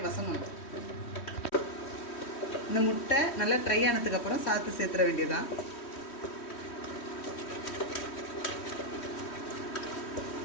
வசங்கணும். இந்த முட்டை நல்லா ட்ரை ஆனதுக்கப்புறம் சாத்து சேர்த்துற வேண்டியதான்.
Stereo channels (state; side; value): late; right; 3.1 ms